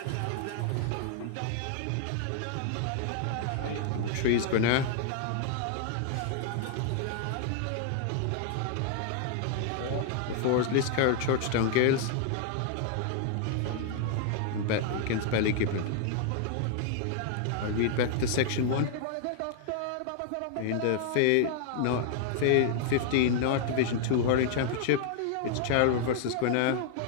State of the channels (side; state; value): both; different; correlation 0.00